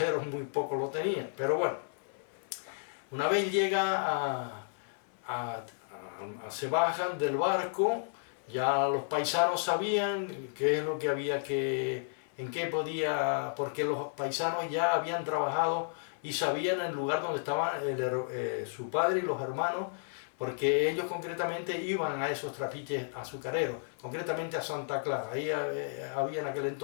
muy poco lo tenían. Pero bueno, una vez llega se bajan del barco, ya los paisanos sabían qué es lo que había en qué podía, porque los paisanos ya habían trabajado y sabían el lugar donde estaban su padre y los hermanos, porque ellos concretamente iban a esos trapiches azucareros, concretamente a Santa Clara. Ahí había en aquel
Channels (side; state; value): right; silent; 56 dB below the other